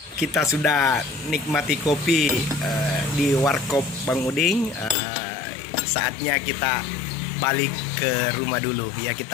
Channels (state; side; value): drops out; right; at 5.0 s